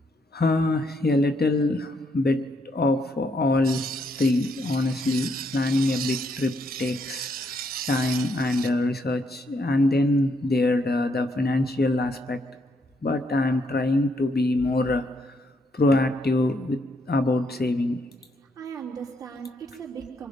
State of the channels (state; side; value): normal; both; correlation 0.75